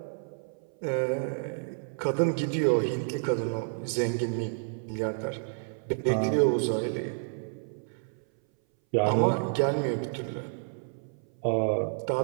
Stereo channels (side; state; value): left; silent; 58 dB below the other